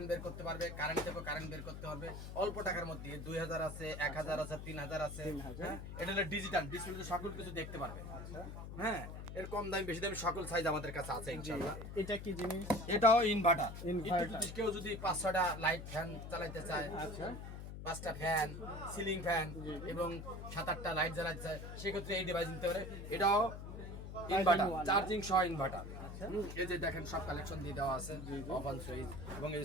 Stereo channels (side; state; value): left; noise; hum, 9 dB below the sound